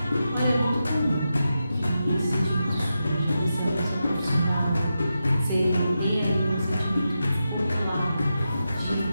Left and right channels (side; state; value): both; inverted; correlation -0.89